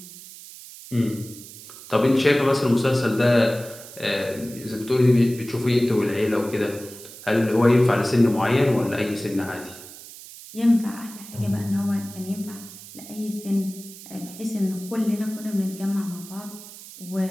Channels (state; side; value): noise; right; hiss, 16 dB below the sound